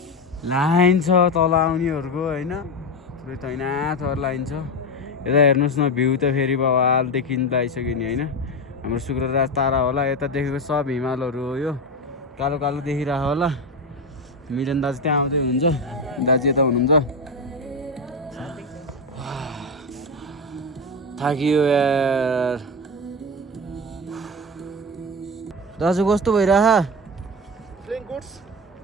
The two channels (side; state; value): both; normal; correlation 0.17